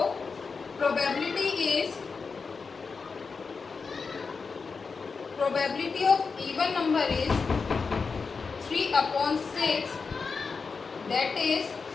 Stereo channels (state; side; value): quieter; right; 4.9 dB